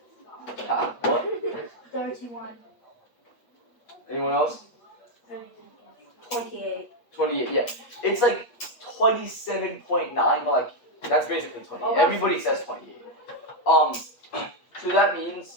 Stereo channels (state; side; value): late; right; 8.4 ms